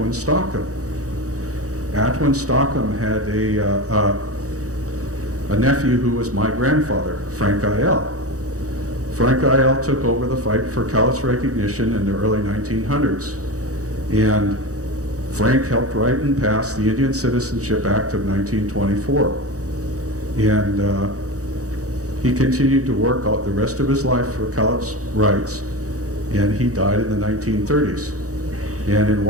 Stockham. Atwin Stockham had a nephew who was my grandfather, Frank Lyall. Frank Lyall took over the fight for Cowlitz recognition in the early 1900s. And Frank helped write and pass the Indian Citizenship Act of 1924. And he continued to work out the rest of his life for Cowlitz rights, and he died in the 1930s. And in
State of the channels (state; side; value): late; left; 0.66 ms